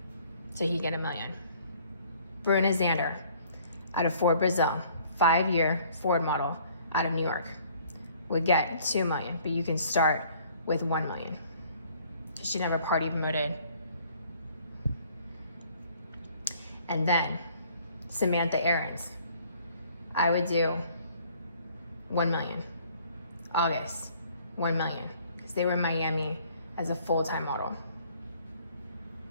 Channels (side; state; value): both; inverted; correlation -0.58